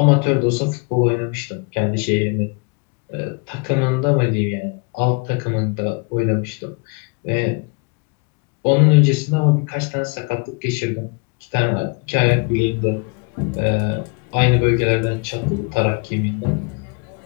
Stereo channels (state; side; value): quieter; right; 31.9 dB